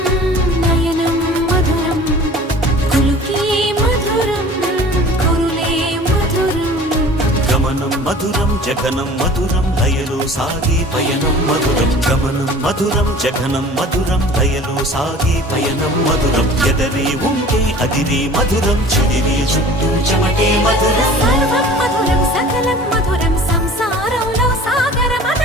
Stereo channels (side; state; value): both; normal; correlation 0.44